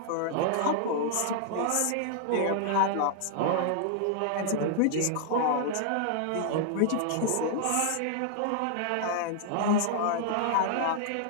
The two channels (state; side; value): different; both; correlation -0.01